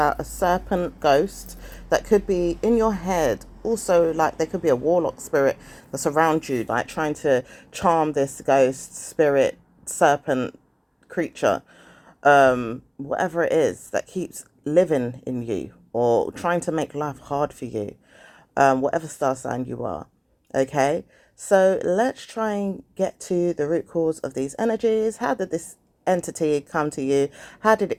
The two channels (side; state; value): both; identical; correlation 1.00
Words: a serpent ghost that could be in your head. Also, like there could be a warlock spirit that's around you, like trying to charm this ghost spirit serpent creature, whatever it is that keeps living in you or trying to make life hard for you, whatever star sign you are. Okay, so let's try and get to the root cause of these energies. How did this entity come to you? How did